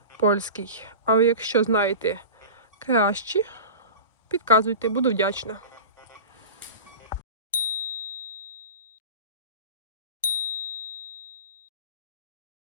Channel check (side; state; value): both; inverted; correlation -0.33